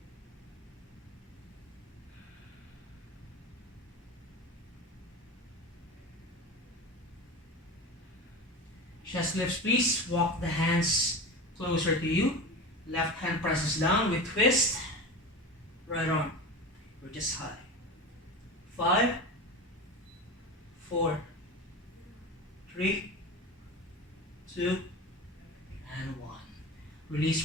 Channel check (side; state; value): both; normal; correlation 0.28